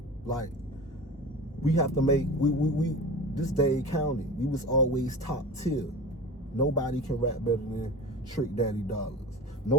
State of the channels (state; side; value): normal; both; correlation 0.33